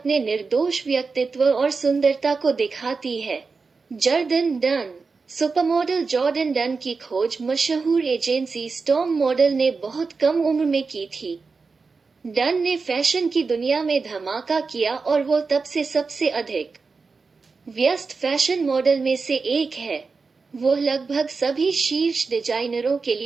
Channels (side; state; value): left; quieter; 4.5 dB